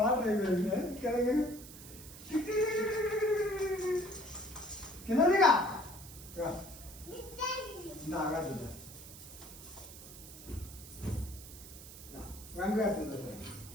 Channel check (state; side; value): noise; right; hiss, 15 dB below the sound